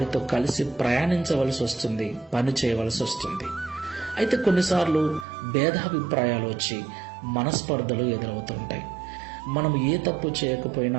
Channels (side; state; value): left; drops out; at 5.2 s